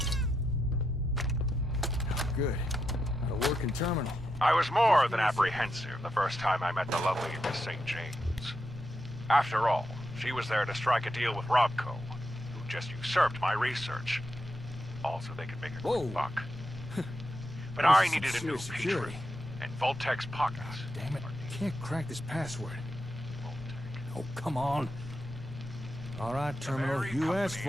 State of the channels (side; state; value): both; normal; correlation 0.85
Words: Good. Got a working terminal. I was more than apprehensive the first time I met the lovely Miss St. James. After all, she was there to strike a deal with Robco, who just usurped my research. Also, they could make a quick buck. But I needed a new patron, and Vault-Tec's pockets. Damn it, I can't crack this password. Oh, come on. All right, terminal, you asked